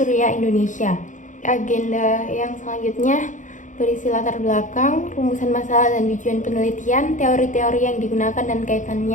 Indonesia. Agenda yang selanjutnya berisi latar belakang, rumusan masalah dan tujuan penelitian, teori-teori yang digunakan dan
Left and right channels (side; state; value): right; late; 0.37 ms